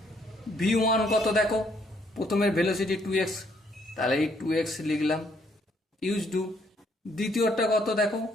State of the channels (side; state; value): both; normal; correlation 0.69